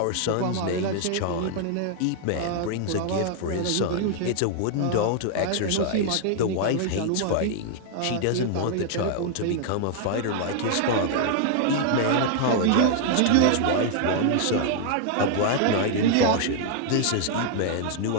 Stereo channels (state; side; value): different; both; correlation 0.00